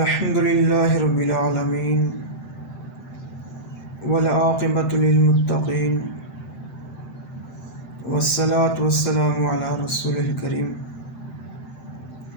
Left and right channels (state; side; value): late; right; 7.8 ms